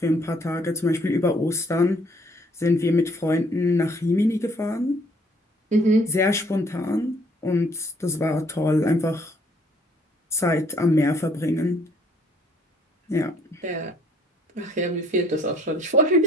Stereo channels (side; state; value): both; normal; correlation 0.62